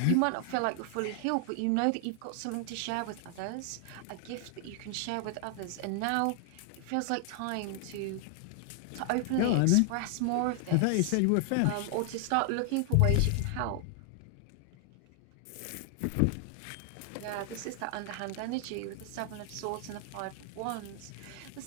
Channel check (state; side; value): different; both; correlation 0.00